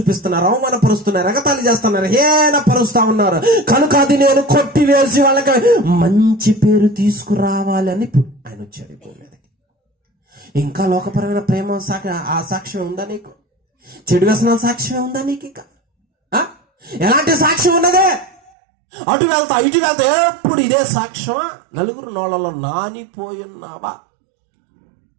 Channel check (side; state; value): left; drops out; at 18.5 s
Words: అవమానపరుస్తున్నారు, ఎగతాళి చేస్తున్నారు, హేళనపరుస్తా ఉన్నారు. కనుక అది నేను కొట్టివేసి వాళ్ళకి మంచి పేరు తీసుకురావాలి అని ఆయన వచ్చాడు భూమి మీదకి. ఇంకా లోకపరమైన ప్రేమ ఆ సాక్ష్యం ఉందా నీకు? చెడు వ్యసనాల సాక్ష్యం ఉందా నీకు? ఇంకా ఎలాంటి సాక్ష్యం ఉన్నదే? అటు వెళ్తా ఇటు వెళ్తా ఎప్పుడు ఇదే సాక్ష్యమా? నలుగురు నోళ్ళలో నానిపోయున్నావా?